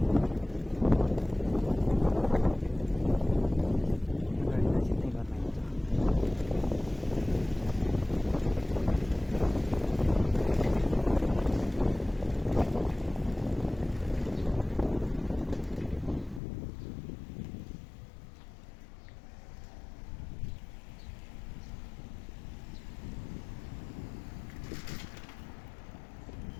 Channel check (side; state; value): right; drops out; at 16.4 s